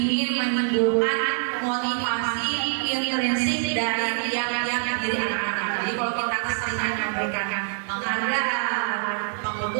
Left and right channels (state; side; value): silent; left; digital silence